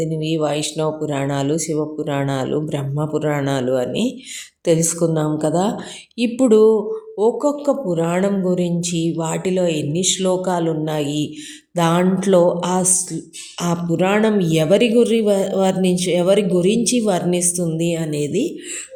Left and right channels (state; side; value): identical; both; correlation 1.00